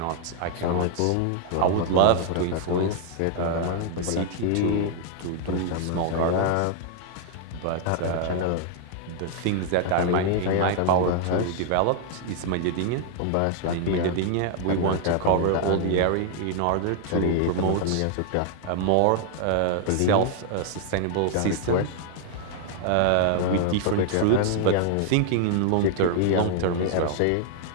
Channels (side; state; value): both; different; correlation 0.00